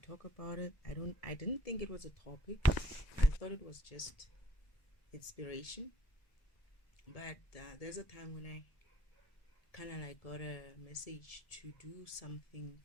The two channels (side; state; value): right; late; 1.7 ms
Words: about it. I didn't think it was a topic. I thought it was just inspiration. But there's a time when I kind of like got a message to do something